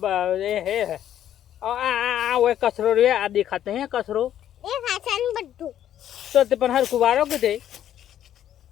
એ હે આ ઓય કચરો રે આ દેખાતે હે કચરો એ ખાસન બધું તો તે પણ હરખું વારો કે તે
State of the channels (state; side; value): quieter; right; 11.0 dB